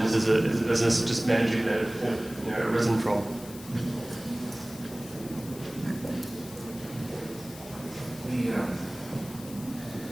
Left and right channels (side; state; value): left; noise; hiss, 16 dB below the sound